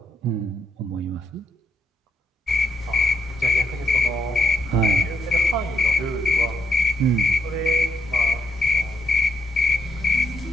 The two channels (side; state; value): both; normal; correlation 0.76